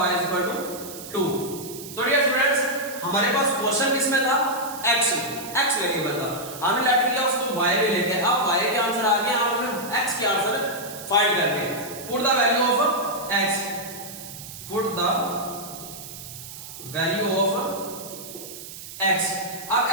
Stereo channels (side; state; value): right; noise; hiss, 12 dB below the sound